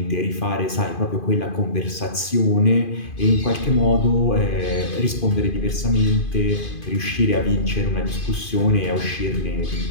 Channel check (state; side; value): late; right; 2.5 ms